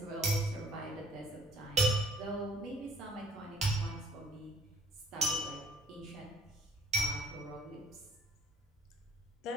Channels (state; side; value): normal; both; correlation 0.57